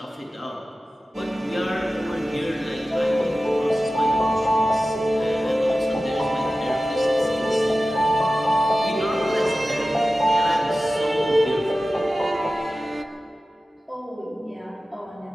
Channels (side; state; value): both; normal; correlation 0.95